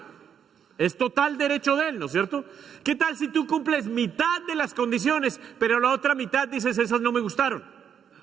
Es total derecho de Él, ¿no es cierto? ¿Qué tal si tú cumples mitad de las condiciones, pero la otra mitad dices, esas no me gustaron?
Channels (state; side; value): quieter; left; 8.2 dB